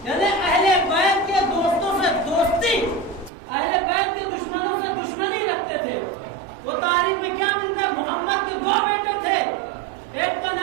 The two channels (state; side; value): drops out; left; at 3.3 s